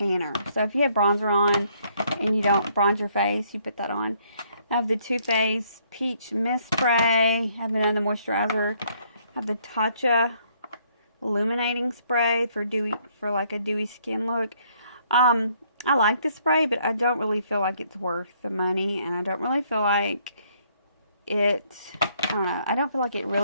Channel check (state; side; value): inverted; both; correlation -0.67